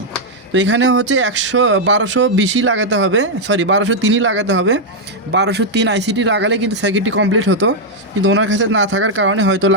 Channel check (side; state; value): both; normal; correlation -0.02